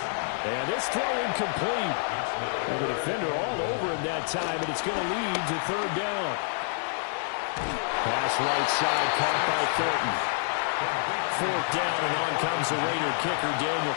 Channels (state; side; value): silent; right; digital silence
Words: And this throw incomplete. Well, the defender all over him that time, and it's going to lead to 3rd down. Pass right side, caught by Thornton. 4th down, and on comes the Raider kicker, Daniel